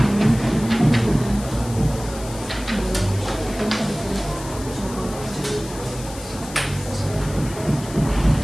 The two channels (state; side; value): noise; left; hiss, 15 dB below the sound